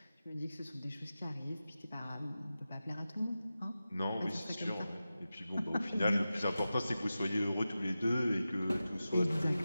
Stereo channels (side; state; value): both; inverted; correlation -0.94